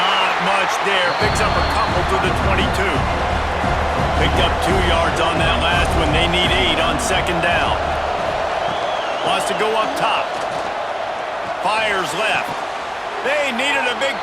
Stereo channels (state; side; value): identical; both; correlation 1.00